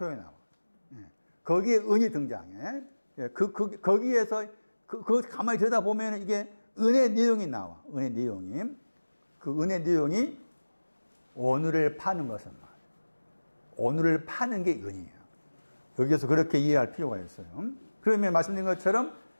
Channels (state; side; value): inverted; both; correlation -1.00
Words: 나와요. 거기에 은이 등장해. 거기에서 가만히 들여다보면 이게 은의 내용이 나와. 은의 내용이. 그 은의 내용이 오늘을 파는 것은 말이에요. 오늘을 파는 게 은이에요. 여기서 그렇게 이해할 필요가 있어요. 그러면 말씀드린 것처럼